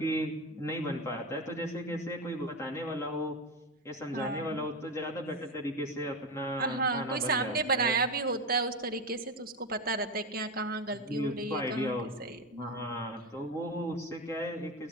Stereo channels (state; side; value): normal; both; correlation 0.16